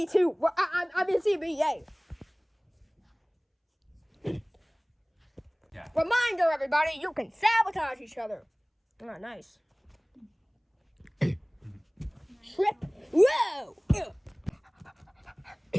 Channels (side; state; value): both; identical; correlation 1.00